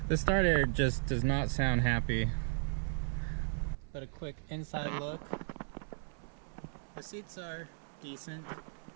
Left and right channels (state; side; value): silent; left; 54 dB below the other